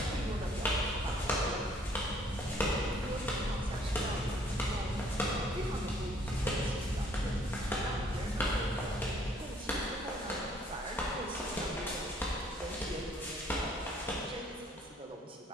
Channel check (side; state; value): both; normal; correlation 0.62